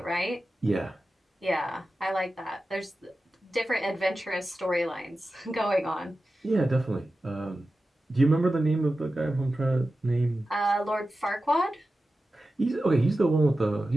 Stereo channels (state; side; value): normal; both; correlation 0.94